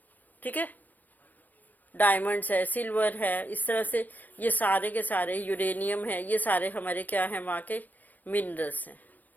ठीक है, डायमंड्स है, सिल्वर है, इस तरह से ये सारे के सारे, यूरेनियम है, ये सारे हमारे क्या हैं? वहाँ के मिनरल्स हैं,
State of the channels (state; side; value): late; right; 0.083 ms